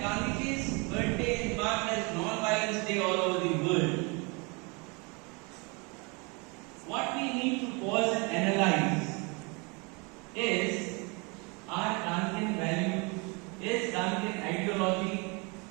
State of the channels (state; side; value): quieter; left; 30.1 dB